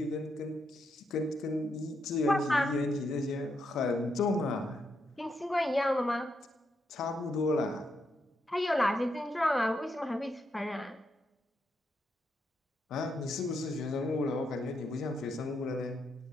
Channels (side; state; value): both; normal; correlation 0.81